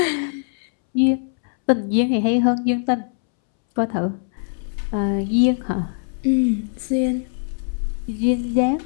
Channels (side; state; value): right; silent; 64 dB below the other